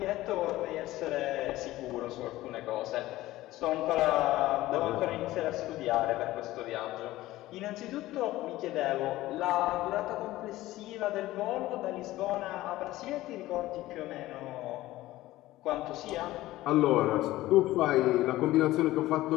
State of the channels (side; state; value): right; quieter; 16.6 dB